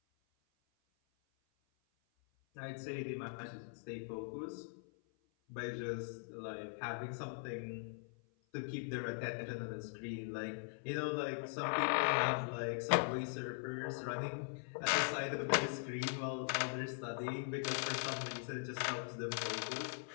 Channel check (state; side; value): silent; right; 50 dB below the other